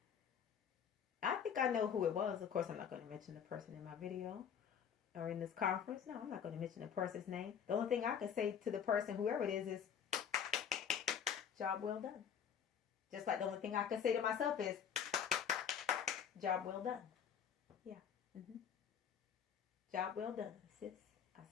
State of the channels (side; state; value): right; quieter; 8.1 dB